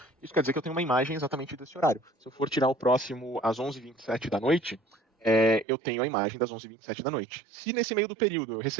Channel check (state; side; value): drops out; left; at 5.7 s